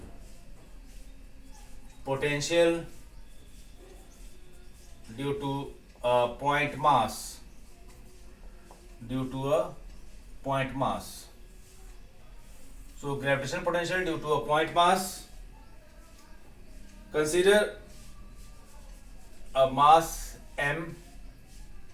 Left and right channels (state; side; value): identical; both; correlation 1.00